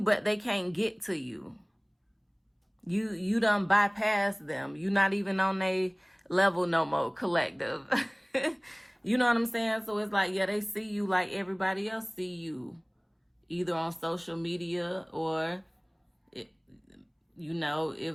they can't get to you. You done bypass them. You're not even on their level no more, collective. You know what I'm saying? So it's like, yeah, they see you like everybody else see you. Either on social media or, you know,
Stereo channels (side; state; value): both; identical; correlation 1.00